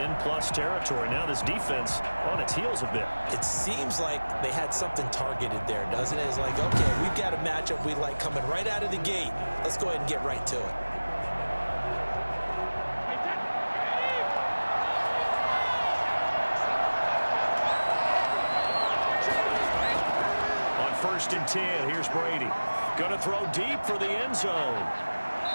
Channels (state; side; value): inverted; both; correlation -1.00